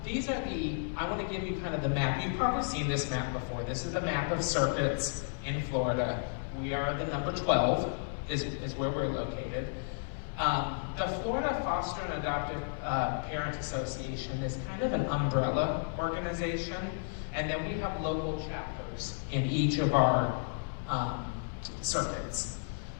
These are I want to give you kind of the map map, you've probably seen this map before. This is the map of circuits in Florida. We are the number 12 is where we're located. The Florida Foster and Adoptive Parent Association is kind of an umbrella organization, and then we have local chapters in each of our circuits.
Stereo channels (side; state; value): right; silent; digital silence